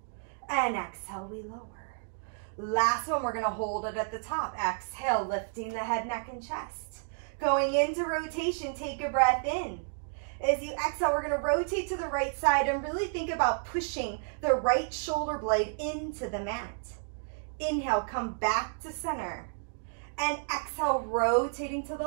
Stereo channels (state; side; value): silent; left; digital silence